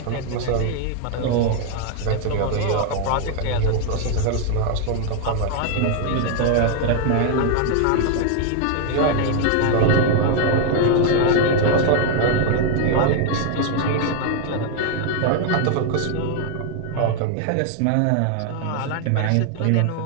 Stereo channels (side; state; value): both; different; correlation 0.00